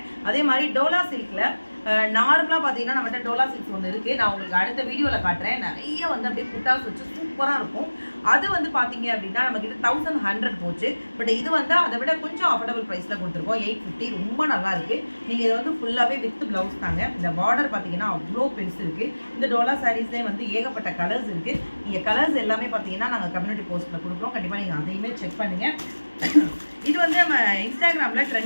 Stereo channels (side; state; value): both; inverted; correlation -1.00